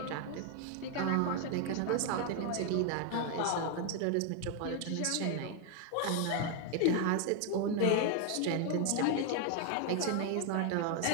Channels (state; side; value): different; both; correlation 0.01